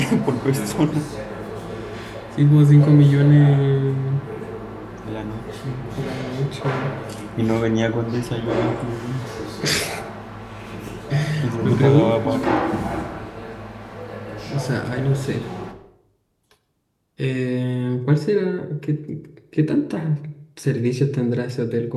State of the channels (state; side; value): identical; both; correlation 1.00